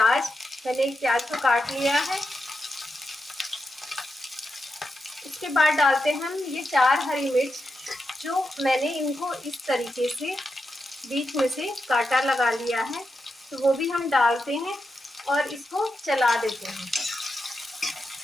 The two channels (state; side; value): normal; both; correlation 0.87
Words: मैंने एक प्याज को काट लिया है। इसके बाद डालते हैं हम ये 4 हरी मिर्च, जो मैंने इनको इस तरीके से बीच में से कांटा लगा लिया है, तो वो भी हम डालते हैं और इसको चला देते हैं।